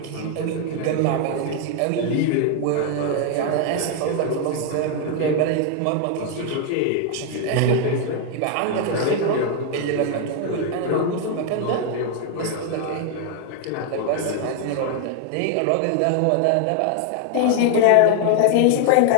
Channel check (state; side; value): different; both; correlation 0.00